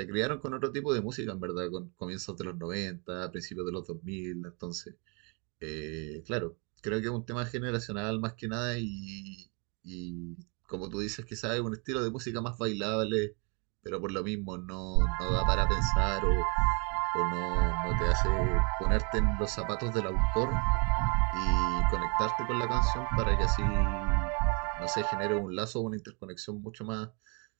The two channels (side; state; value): left; quieter; 33.9 dB